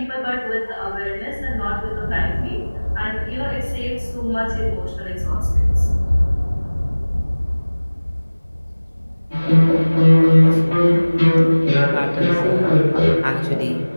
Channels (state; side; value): inverted; both; correlation -1.00